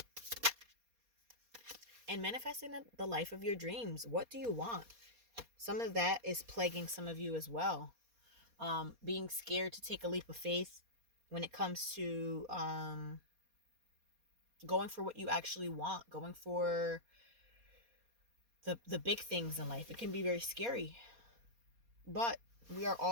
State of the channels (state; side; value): late; left; 4.2 ms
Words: And manifesting the life of your dreams. What do you want? Some of that is plaguing some of you as well. Being scared to take a leap of faith when it comes to going for what you actually want, going for the big things in life. It can be very scary. But we are